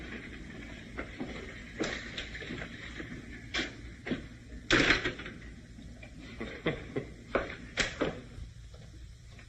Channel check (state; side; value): identical; both; correlation 1.00